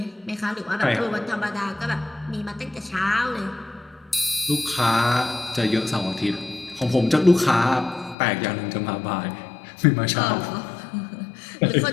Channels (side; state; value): right; drops out; at 8.2 s